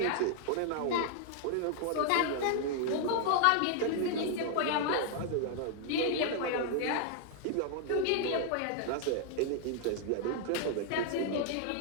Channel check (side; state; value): both; different; correlation 0.00